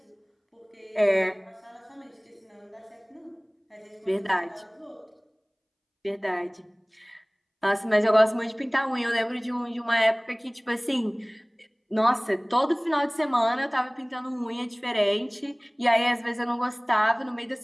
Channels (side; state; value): both; identical; correlation 1.00